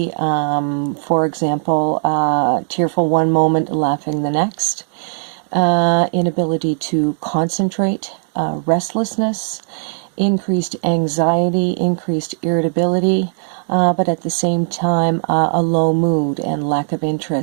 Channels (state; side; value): silent; left; digital silence